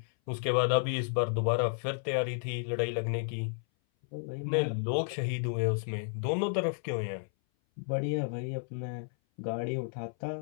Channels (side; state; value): right; silent; 56 dB below the other